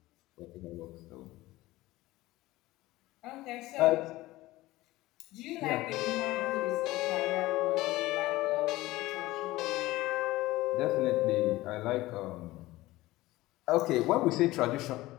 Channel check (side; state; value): right; quieter; 18.1 dB